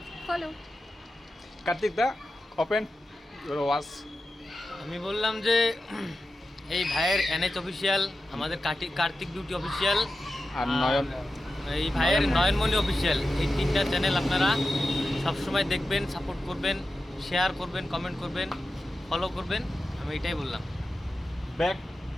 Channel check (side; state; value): both; normal; correlation 0.92